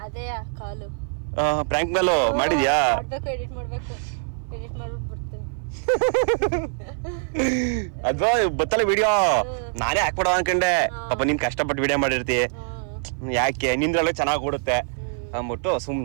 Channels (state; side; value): silent; left; 57 dB below the other